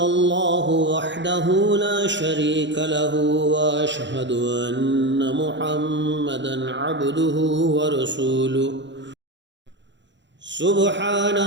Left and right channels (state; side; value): late; left; 0.53 ms